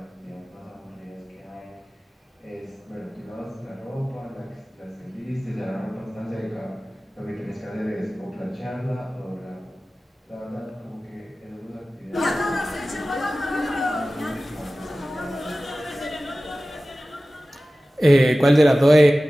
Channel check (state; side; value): normal; both; correlation 0.96